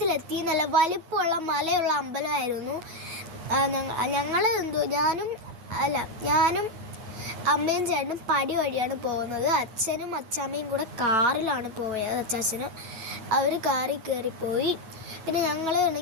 നല്ല വലിപ്പമുള്ള മലയുള്ള അമ്പലമായിരുന്നു. ഞാനും അമ്മയും ചേട്ടനും പടി വഴിയാണ് പോകുന്നത്. അച്ഛനും അച്ചാമ്മയും കൂടെ കാറിലാണ് പോയത്. അച്ചാച്ചനും അവർ കാറിൽ കയറിപ്പോയി. പിന്നെ ഞങ്ങൾ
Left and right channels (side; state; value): left; late; 8.3 ms